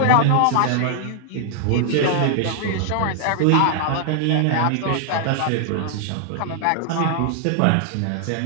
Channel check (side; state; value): both; different; correlation 0.00